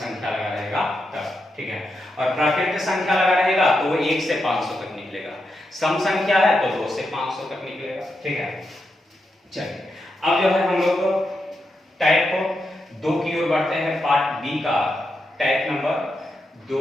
लगा रहेगा तब, ठीक है। और प्राकृत संख्या लगा रहेगा तो वो 1 से 500 तक निकलेगा। सम संख्या है तो 2 से 500 तक निकलेगा, ठीक है। चलिए, अब जो है हम लोग टाइप 2 की ओर बढ़ते हैं। पार्ट बी का टाइप नंबर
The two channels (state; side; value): normal; both; correlation 0.85